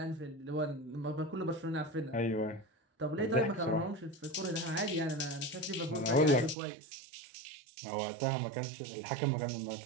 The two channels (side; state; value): left; drops out; at 6.6 s